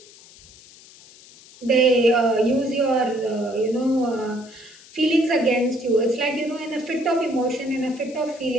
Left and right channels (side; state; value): left; noise; hiss, 22 dB below the sound